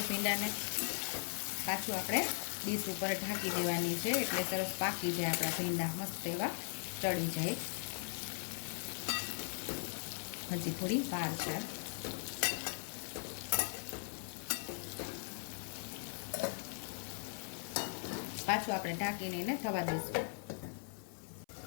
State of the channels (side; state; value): right; silent; 52 dB below the other